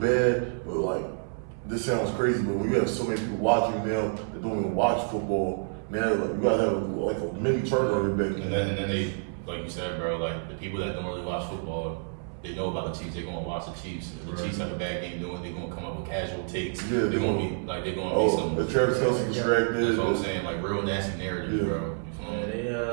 but like, this sounds crazy, but when you have so many people watching now, that don't even watch football, now like, you gotta have like a mini turnover back. And then they, like you said, bro, like the people that don't really watch football, they know about the Chiefs. They're gonna watch the Chiefs. If the Chiefs have a bad game doing, they're gonna come up with casual takes. Yeah, they're gonna be some. The Travis Kelce distracted. That's what I'm saying, like real nasty narratives, Yeah. bro. You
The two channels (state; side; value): silent; left; 59 dB below the other